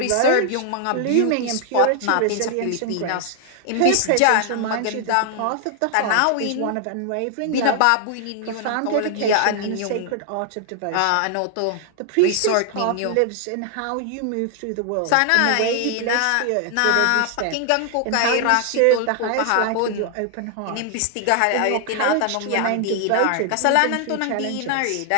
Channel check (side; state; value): both; different; correlation 0.00